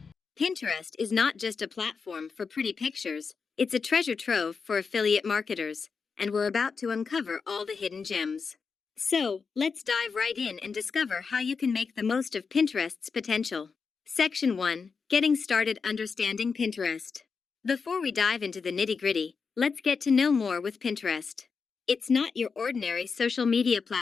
Pinterest is not just a platform for pretty pictures, it's a treasure trove for affiliate marketers, and we're about to uncover all the hidden gems. So, let's dive right in and discover how you can make the most of Pinterest's potential. Section 1. Getting started understanding Pinterest. Before we dive into the nitty-gritty, let's get to know more with Pinterest. It's not your ordinary social media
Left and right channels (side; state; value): right; quieter; 5.3 dB